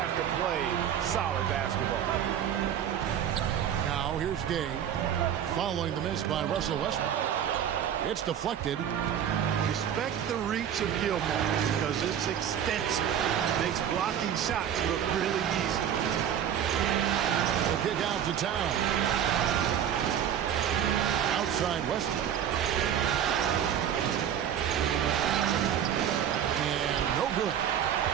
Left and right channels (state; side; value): quieter; left; 9.4 dB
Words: to play solid basketball. Now here's Gay following the miss by Russell Westbrook. It's deflected. Respect the reach of Gilmore because it's extensive. Makes blocking shots look really easy. The kick out to Town. Outside Westbrook. And no good.